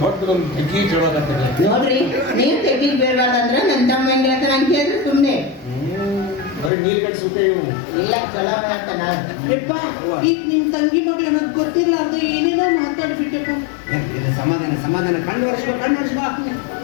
ದೊಡ್ಡದೊಂದು ತೆಗಿ ಚಳೋಕತ್ತದೆ ನೋಡ್ರಿ ನೀವ್ ತೆಗಿಗ್ ಬೇಡವಾದಂದ್ರ ನನ್ ತಮ್ಮ ಹೆಂಗ್ ಹೇಳ್ತಾನ ಅಂತ ಹೇಳಿದ್ರೆ ಸುಮ್ನೆ ಬರೀ ನೀರು ಕಟ್ಸುತ್ತೆ ಇವು ಇಲ್ಲ ಚಲೋ ಹೇಳ್ತಾನ ಈಗ ನಿಮ್ ತಂಗಿ ಮಗಳು ನನಗ್ ಗೊತ್ತಿರ್ಲಾರ್ದ ಏನೇನೋ ಮಾತಾಡ್ಬಿಟ್ಟಪ್ಪ ಇದು ಸಮಾಧಾನ ಸಮಾಧಾನ ಕಣ್ಣು ವರ್ಷ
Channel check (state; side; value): drops out; right; at 6.7 s